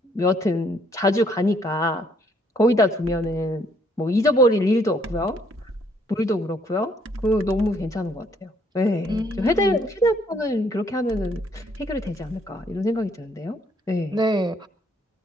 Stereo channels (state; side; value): normal; both; correlation 0.67